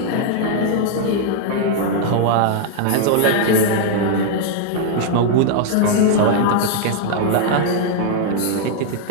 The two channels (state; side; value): different; both; correlation 0.00